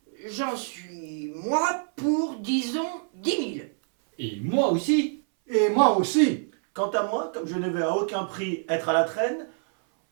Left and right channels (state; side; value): silent; left; 59 dB below the other